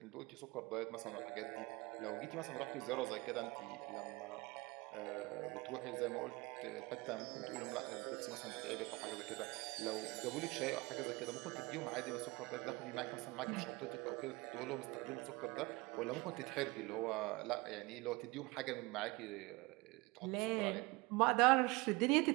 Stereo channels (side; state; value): left; quieter; 24.0 dB